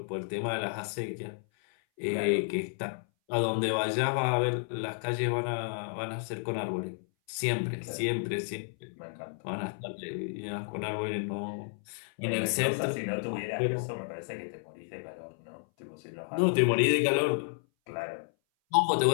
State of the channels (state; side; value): silent; right; 57 dB below the other